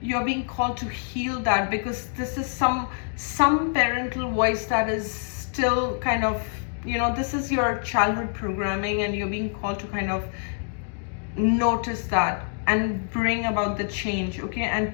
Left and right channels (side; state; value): right; silent; 61 dB below the other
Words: being called to heal that, because this is some parental voice that is still kind of, you know, this is your childhood programming, and you're being called to kind of notice that and bring about the change. Okay,